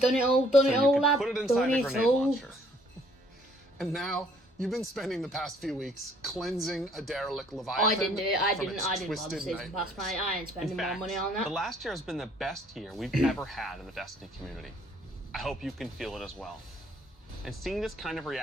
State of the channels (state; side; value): normal; both; correlation 0.62